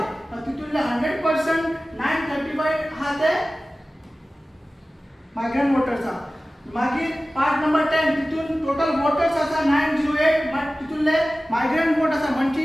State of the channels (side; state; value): both; normal; correlation 0.96